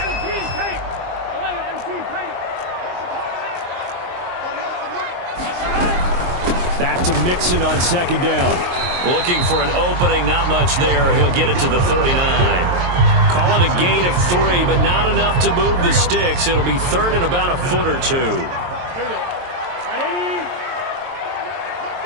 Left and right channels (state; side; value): late; left; 23 ms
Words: tape. 11 MT tape. Back to Mixon on 2nd down. Looking for an opening, not much there. He'll get it to the 39. Call it a gain of 3, but not enough to move the sticks. It'll be 3rd and about a foot or 2. Here we go. Right 80.